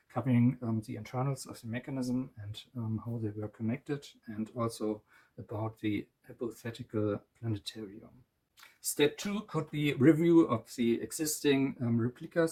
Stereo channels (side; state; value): both; identical; correlation 1.00